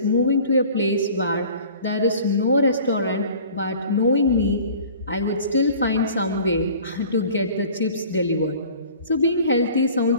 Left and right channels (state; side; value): inverted; both; correlation -0.47